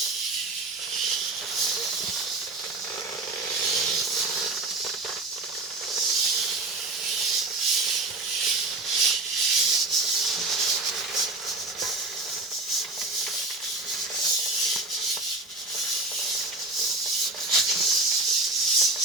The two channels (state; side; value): quieter; left; 3.2 dB